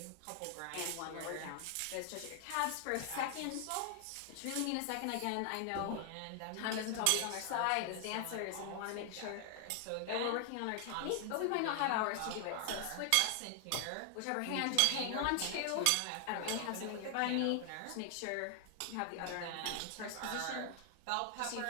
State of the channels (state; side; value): different; both; correlation 0.00